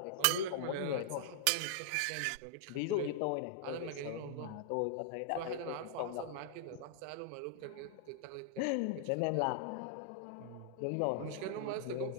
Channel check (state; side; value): different; both; correlation -0.01